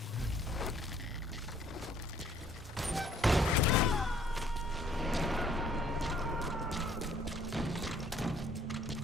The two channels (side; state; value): both; normal; correlation 0.61